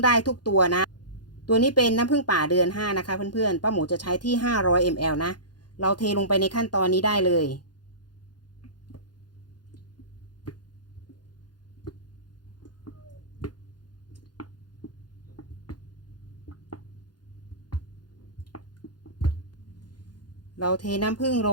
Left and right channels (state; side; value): late; right; 0.70 ms